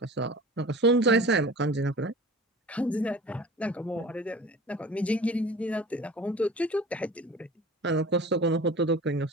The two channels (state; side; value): normal; both; correlation 0.40